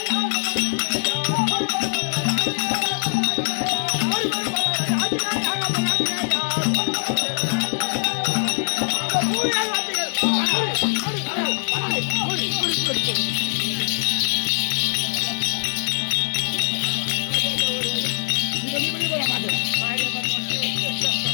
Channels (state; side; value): silent; right; 64 dB below the other